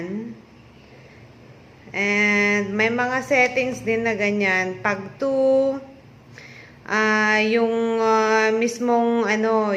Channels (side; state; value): both; identical; correlation 1.00